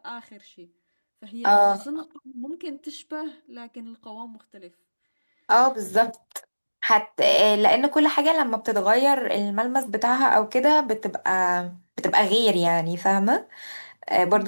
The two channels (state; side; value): inverted; both; correlation -1.00